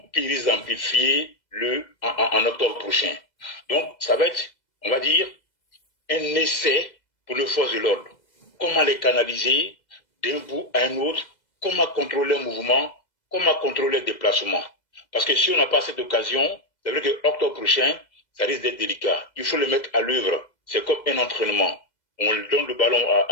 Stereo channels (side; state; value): right; late; 2.0 ms